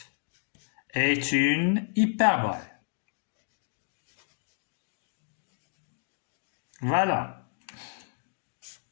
est une hyperbole. Voilà.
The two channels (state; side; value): silent; right; digital silence